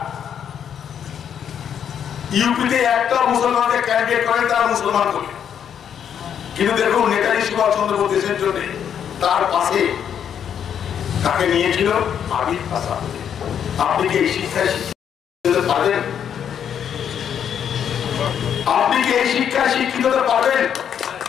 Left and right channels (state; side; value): quieter; right; 8.6 dB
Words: ইউপিতে একটা মুসলমানকে ক্যান্ডিডেট করেন, তারা মুসলমান করে। কিন্তু দেখুন নেতাজি সুভাষচন্দ্র বোস দেশের জন্য তার পাশে তাকে নিয়েছিল আবির আসাদ। আপনি কি এই শিক্ষায় শিক্ষিত পারেন? আপনি কি এই শিক্ষায় শিক্ষিত পারেন